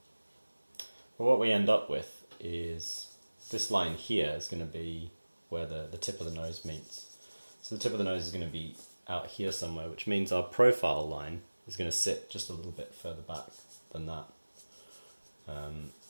But what we end up with is this line here is going to be where the tip of the nose meets. So the tip of the nose is going to be out here somewhere, which means our profile line is going to sit just a little bit further back than that. And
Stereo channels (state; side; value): inverted; both; correlation -1.00